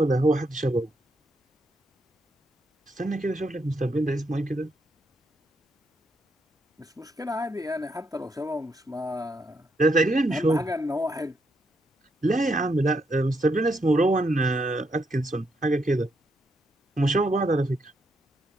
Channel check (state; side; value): normal; both; correlation 0.78